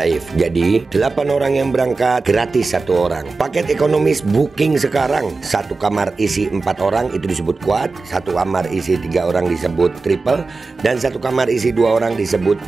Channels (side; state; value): left; quieter; 3.9 dB